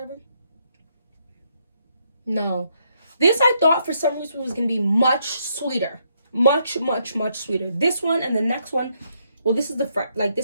No. This I thought for some reason was going to be much sweeter. Much sweeter. This one and the next one, well, this is the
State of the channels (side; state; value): both; inverted; correlation -0.75